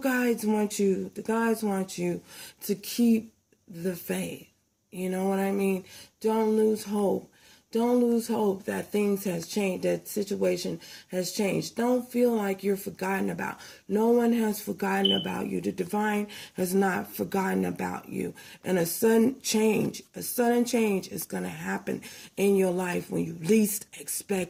want you to keep the faith. You know what I mean? Don't lose hope. Don't lose hope that things has changed, that situation has changed. Don't feel like you're forgotten about. No one has forgotten about you. The divine has not forgotten about you. And a sudden change is going to happen in your life when you least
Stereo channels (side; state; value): both; identical; correlation 1.00